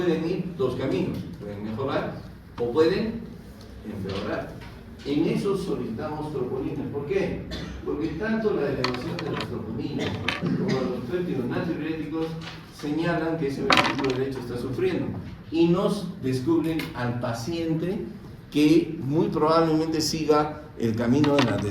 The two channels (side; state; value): both; identical; correlation 1.00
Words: ir dos caminos. Pueden mejorar o pueden empeorar. En eso solicitamos troponinas. ¿Por qué? Porque tanto la elevación de las troponinas como los péptidos natriuréticos señalan que ese ventrículo derecho está sufriendo y nos descubren al paciente que muy probablemente siga el camino de la